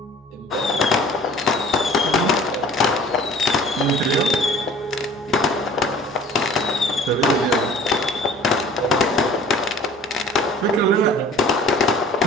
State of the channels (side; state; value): both; normal; correlation 0.47